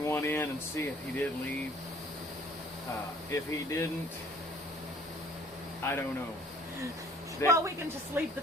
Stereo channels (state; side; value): normal; both; correlation 0.55